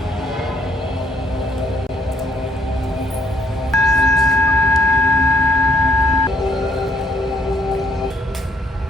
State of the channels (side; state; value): both; normal; correlation 0.68